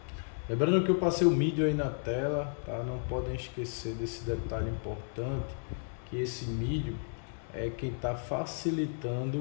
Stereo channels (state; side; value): silent; right; digital silence